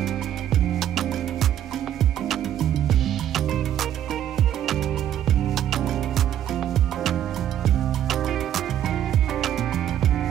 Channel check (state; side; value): quieter; left; 10.9 dB